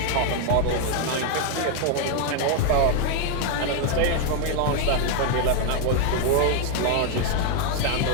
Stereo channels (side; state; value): both; different; correlation 0.01